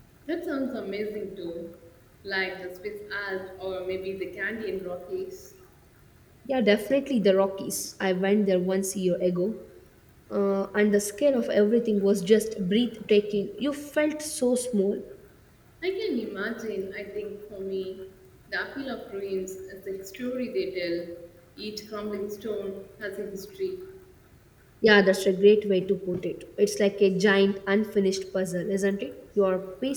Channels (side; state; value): both; identical; correlation 1.00